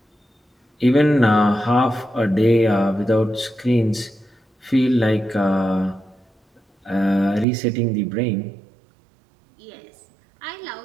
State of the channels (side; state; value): left; drops out; at 7.5 s